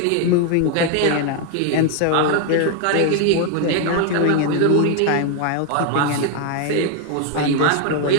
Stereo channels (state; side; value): different; both; correlation 0.00